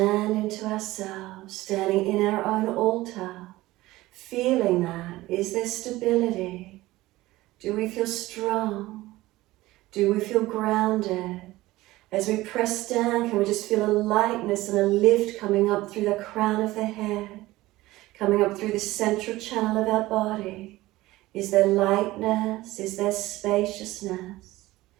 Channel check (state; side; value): quieter; left; 17.9 dB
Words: into ourselves, standing in our own altar, feeling that. Is there stability? Do we feel strong? Do we feel grounded? As we press down, can we just feel a lightness and a lift coming up through the crown of the head, coming up through the central channel of our body? Is there lightness? Is there spaciousness?